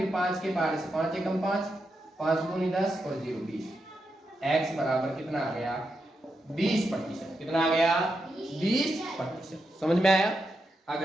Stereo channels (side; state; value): both; normal; correlation 0.86